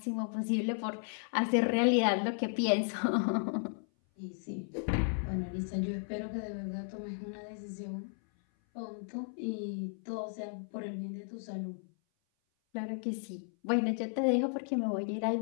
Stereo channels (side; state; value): right; silent; 55 dB below the other